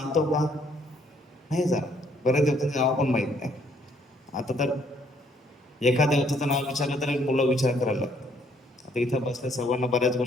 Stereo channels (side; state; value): both; normal; correlation 0.66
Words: का? नाही जाणत. बऱ्याच देवतांचं नाव पण माहीत नाही. आता तर एका देवताचं नाव विचारलं तर मुलं विचार करायला लागतात. आता इथं बसल्या सर्वांना बऱ्याच